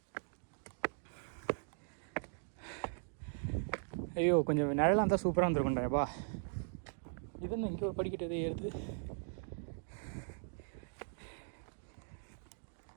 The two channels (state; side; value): silent; left; digital silence